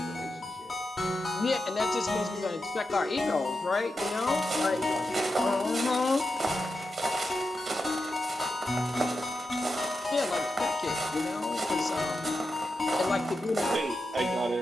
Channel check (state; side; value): normal; both; correlation 0.88